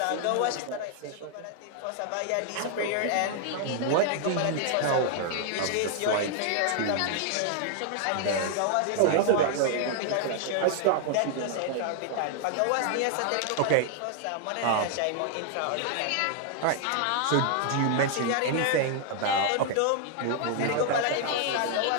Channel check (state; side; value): different; both; correlation 0.00